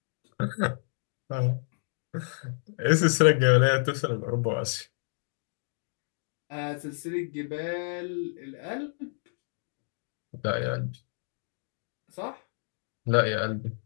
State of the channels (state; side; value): silent; right; digital silence